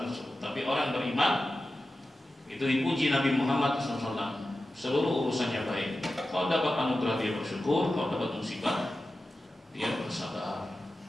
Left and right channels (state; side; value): normal; both; correlation 0.93